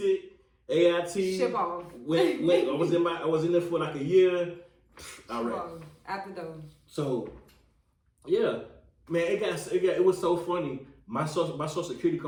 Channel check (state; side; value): identical; both; correlation 1.00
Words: AIT. Ship off. I was in there for like a year. All right. Out the door. So, yeah, man, it was so funny. My social security